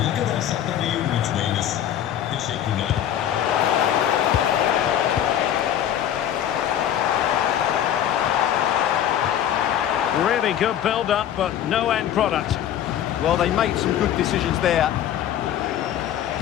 kadar saklamayı unutmayınız. Teşekkürler. Really good build-up, but no end product. Well, they made some good decisions there.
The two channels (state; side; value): quieter; right; 10.5 dB